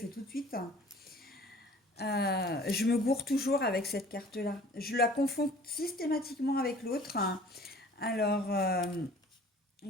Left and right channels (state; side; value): normal; both; correlation 0.49